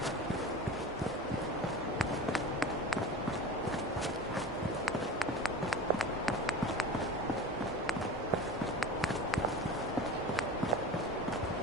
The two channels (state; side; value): normal; both; correlation 0.34